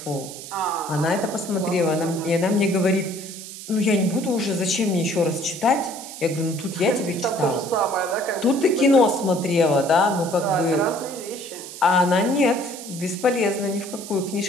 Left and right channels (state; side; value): noise; right; hiss, 12 dB below the sound